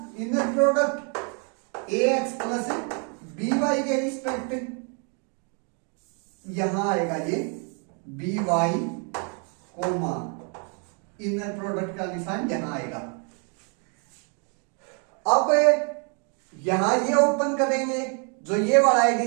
inner product ax plus by के रिस्पेक्ट। यहां आएगा ये by कोमा इनर प्रोडक्ट का निशान यहां आएगा। अब यहां ये ओपन करेंगे, जो ये वाला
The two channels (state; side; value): quieter; left; 38.9 dB